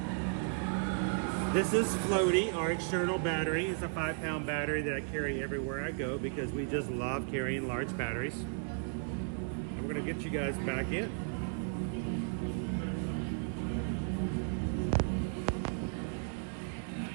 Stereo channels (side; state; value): left; silent; 55 dB below the other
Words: This is Floaty, our external battery. It's a 5-pound battery that I carry everywhere I go because we just love carrying large batteries. And we're gonna get you guys back in.